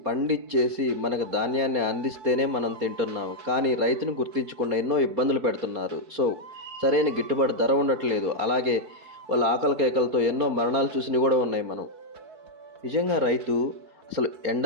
పండించేసి మనకు ధాన్యాన్ని అందిస్తేనే మనం తింటున్నాం. కానీ రైతుని గుర్తించకుండా ఎన్నో ఇబ్బందులు పెడుతున్నారు. సో సరైన గిట్టుబాటు ధర ఉండట్లేదు. అలాగే వాళ్ళ ఆకలి కేకలతో ఎన్నో మరణాలు చూసినవి కూడా ఉన్నాయి. మనం నిజంగా రైతు అసలు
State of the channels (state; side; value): late; left; 4.3 ms